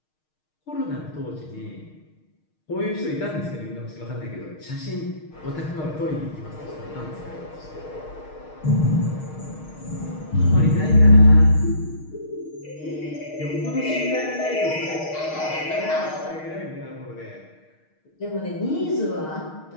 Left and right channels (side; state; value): right; late; 6.5 ms